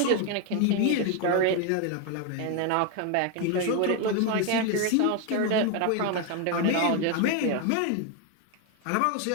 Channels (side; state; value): both; different; correlation 0.01